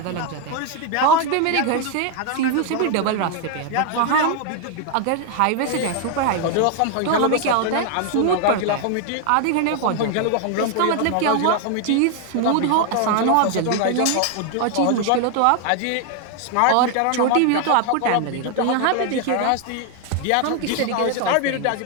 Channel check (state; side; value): different; both; correlation 0.01